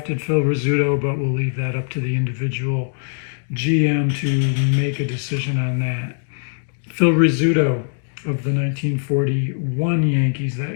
Phil Rizzuto, but we'll leave that up to the individual GM to make a decision on that. Phil Rizzuto of the 1941 Yankees,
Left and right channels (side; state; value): right; silent; digital silence